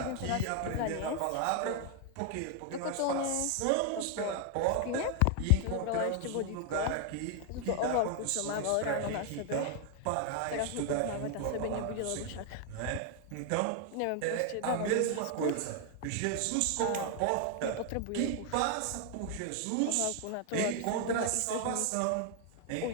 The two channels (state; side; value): different; both; correlation 0.00